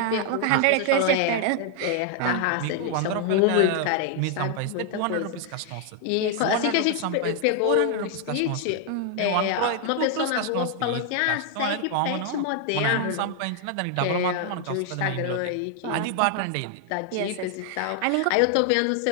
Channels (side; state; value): both; different; correlation 0.00